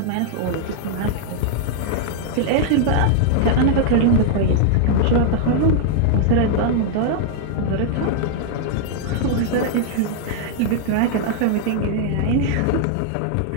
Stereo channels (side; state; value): both; different; correlation 0.00